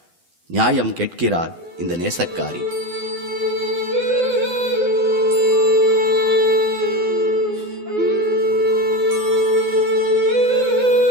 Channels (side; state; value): left; late; 12 ms